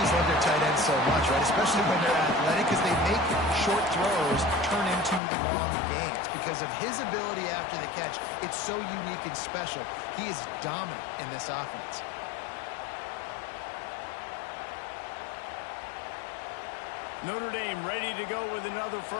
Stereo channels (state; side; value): drops out; right; at 5.2 s